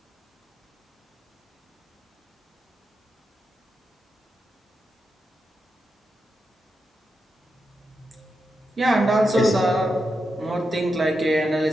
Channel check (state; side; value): normal; both; correlation 0.87